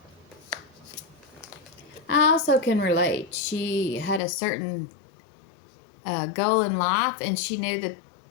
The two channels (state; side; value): drops out; right; at 4.2 s